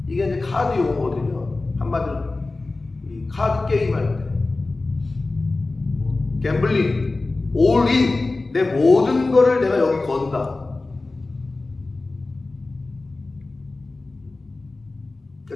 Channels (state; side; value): quieter; right; 3.3 dB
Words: 이게 이제 카드 용어거든요. 한마디로 이 카드 게임 할 때. 갬블링. 올인. 내 모든 거를 내가 여기 건다.